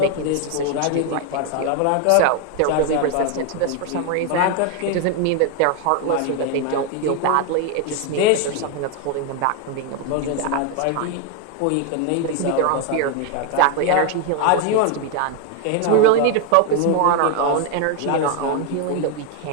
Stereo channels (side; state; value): both; different; correlation 0.01